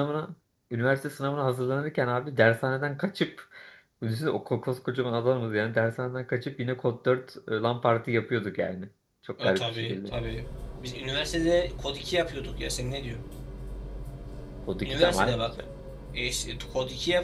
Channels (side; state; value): both; identical; correlation 1.00